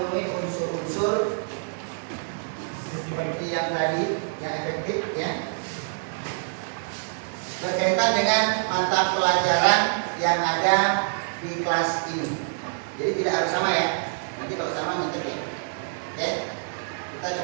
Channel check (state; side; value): silent; left; digital silence